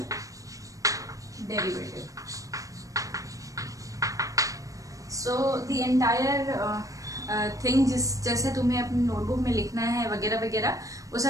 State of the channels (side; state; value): left; late; 0.16 ms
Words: derivative. So the entire thing जैसे तुम्हें अपनी notebook में लिखना है वगैरह वगैरह, वो